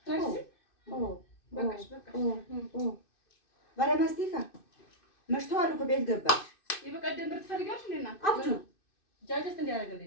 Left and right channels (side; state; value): right; late; 2.6 ms